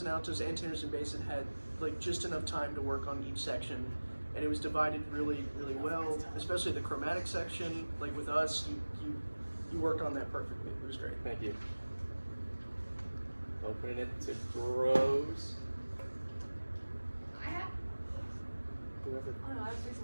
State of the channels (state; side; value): inverted; both; correlation -1.00